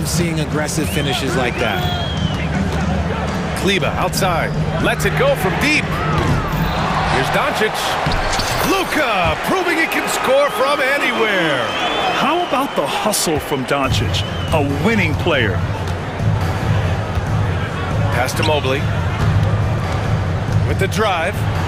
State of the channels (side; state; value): both; identical; correlation 1.00